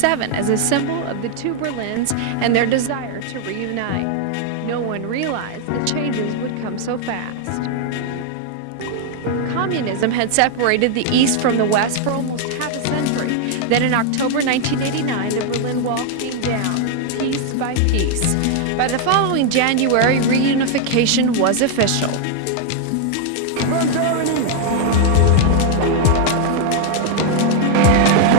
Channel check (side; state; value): both; different; correlation 0.00